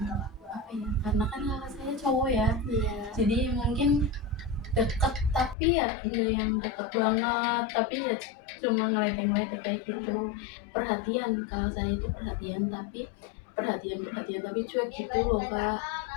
ya, karena kan kakak saya cowok ya, Iya. jadi mungkin deket tapi ya nggak yang deket banget, tapi ya cuma ngeledek-ngeledek kayak gitu. Perhatian, kalau saya itu perhatian tapi perhatian tapi cuek gitu loh Kak.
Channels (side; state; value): right; drops out; at 5.6 s